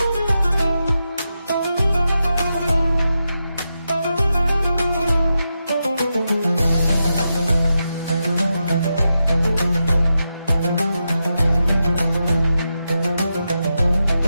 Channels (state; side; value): inverted; both; correlation -0.88